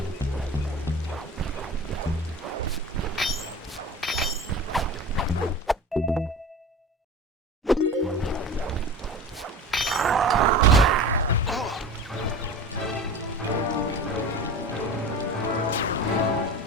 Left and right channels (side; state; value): both; normal; correlation 0.33